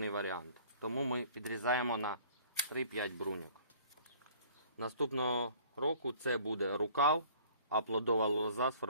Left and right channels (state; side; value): inverted; both; correlation -0.52